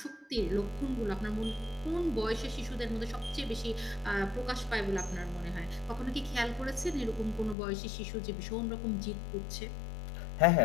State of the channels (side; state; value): right; drops out; at 7.6 s